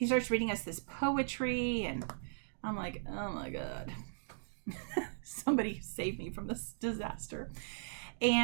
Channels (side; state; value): left; silent; digital silence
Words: starts reading us this poetry, and I'm like, oh my God, somebody save me from this disaster.